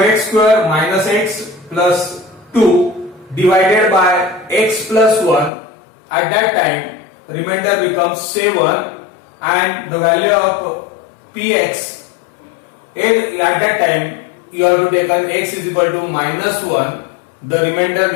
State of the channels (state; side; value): drops out; right; at 5.5 s